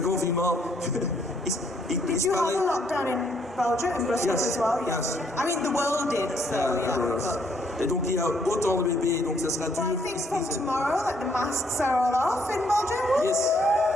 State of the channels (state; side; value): normal; both; correlation 0.69